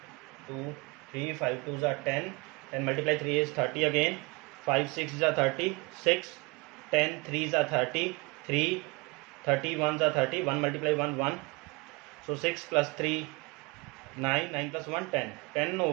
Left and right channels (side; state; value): left; quieter; 27.1 dB